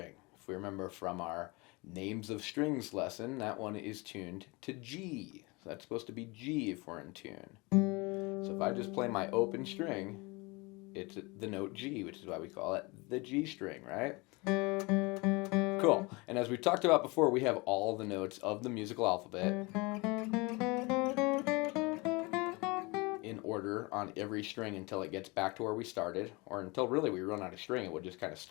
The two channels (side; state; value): right; quieter; 26.1 dB